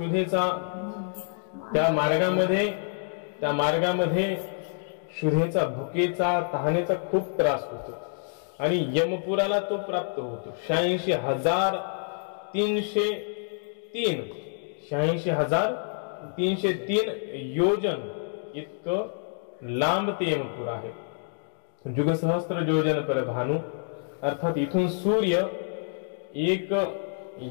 त्या मार्गामध्ये क्षुधेचा, भुकेचा, तहानेचा खूप त्रास होतो आणि यमपुराला तो प्राप्त होतो। 86,303 योजन इतकं लांब ते यमपुर आहे। युगसहस्त्र योजन पर भानु, अर्थात इथून सूर्य एक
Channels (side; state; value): right; silent; digital silence